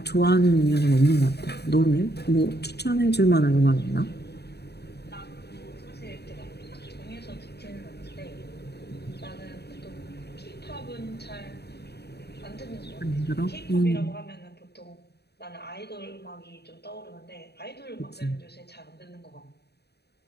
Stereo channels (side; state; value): right; late; 0.48 ms